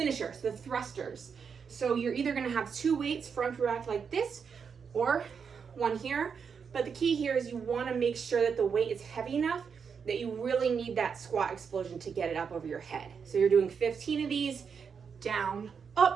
so the thrusters. So you're either gonna have 2 weights front to back like this, or one here. But the key here is you wanna make sure that the weight is heavy enough that you really need that squat explosion to get it up over your head. So you're doing 15 of these, down,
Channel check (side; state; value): left; quieter; 6.3 dB